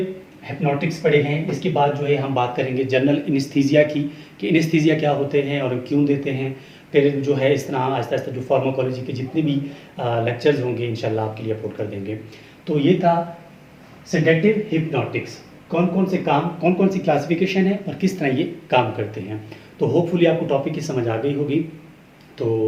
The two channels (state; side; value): identical; both; correlation 1.00